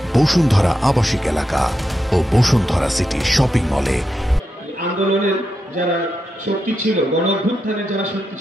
বসুন্ধরা আবাসিক এলাকা ও বসুন্ধরা সিটি শপিং মলে। আন্দোলনের যারা শক্তি ছিল, গণ অভ্যুত্থানের যারা শক্তি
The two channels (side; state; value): both; normal; correlation 0.86